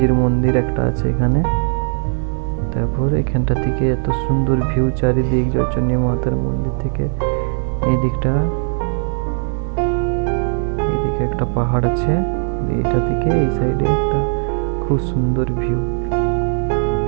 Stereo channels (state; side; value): silent; left; 67 dB below the other